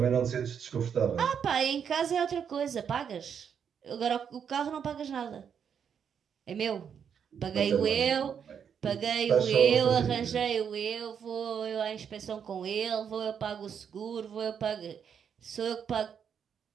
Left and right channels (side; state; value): left; quieter; 7.6 dB